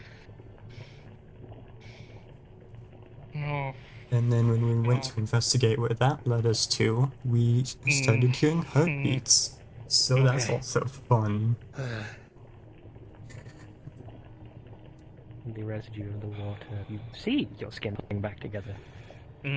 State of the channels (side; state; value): both; identical; correlation 1.00